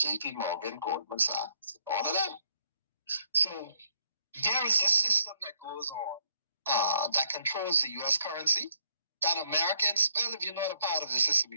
Morgan, Goldman Sachs, all of them. So there is a system that goes on that controls the U.S. currency that Americans, well, if you're not a part of the system,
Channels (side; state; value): both; inverted; correlation -0.70